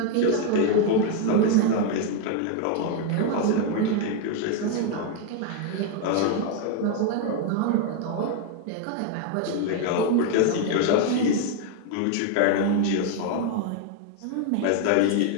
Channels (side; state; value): both; different; correlation 0.01